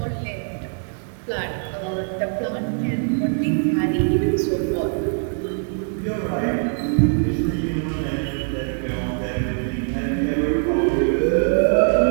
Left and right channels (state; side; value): silent; left; 57 dB below the other